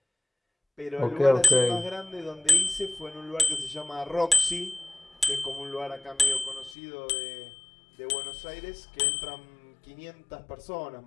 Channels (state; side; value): drops out; right; at 6.8 s